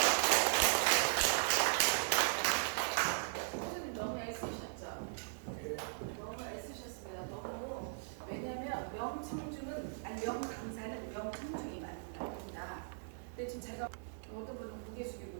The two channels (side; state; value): left; silent; 52 dB below the other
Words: 선생님 너무 애쓰셨죠? 너무 애쓰셨습니다. 너무. 왜냐면 명강사는 명청중이 만든다. 근데 지금 제가 어떤 분은 고개 숙이고